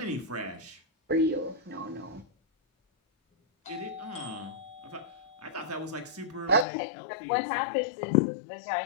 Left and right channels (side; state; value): right; drops out; at 6.7 s